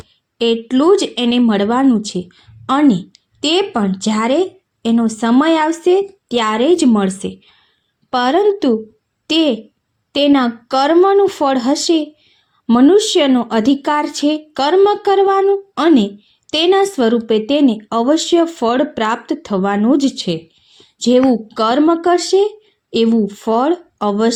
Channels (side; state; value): both; identical; correlation 1.00